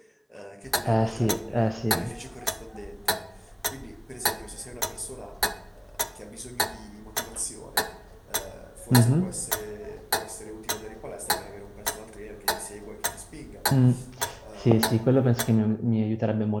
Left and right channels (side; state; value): both; identical; correlation 1.00